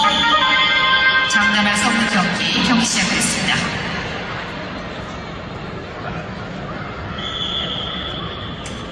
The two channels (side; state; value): both; identical; correlation 1.00